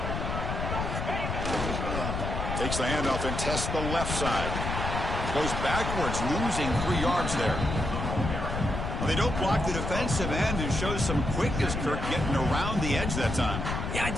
Takes the handoff and tests the left side. Goes backwards, losing 3 yards there. They don't block the defensive end and shows some quickness, Kirk, getting around the edge that time. Yeah,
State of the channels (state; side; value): noise; left; rumble, 3 dB below the sound